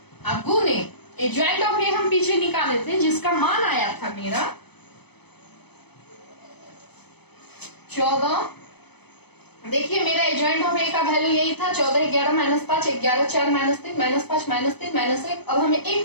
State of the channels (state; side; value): late; right; 0.98 ms